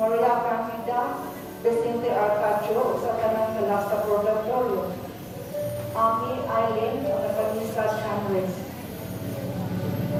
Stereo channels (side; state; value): both; identical; correlation 1.00